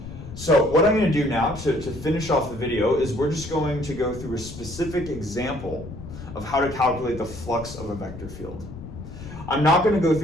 So what I'm going to do now to finish off the video is we're just going to go through a specific example of how to calculate the flux of a vector field. I'm not going to go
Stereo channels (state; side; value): noise; left; rumble, 12 dB below the sound